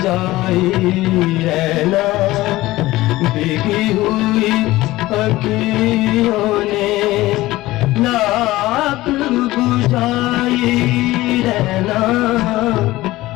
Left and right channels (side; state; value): right; quieter; 17.7 dB